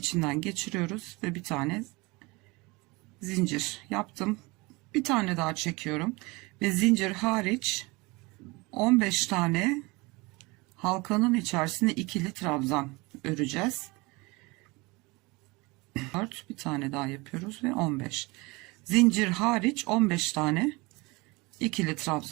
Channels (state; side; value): quieter; left; 24.7 dB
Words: geçiriyoruz ve bir tane zincir yaptım. Bir tane daha çekiyorum ve zincir hariç 15 tane halkanın içerisine ikili trabzan öreceğiz. 4, bir tane daha yapıyoruz ve 15. Zincir hariç 15 tane ikili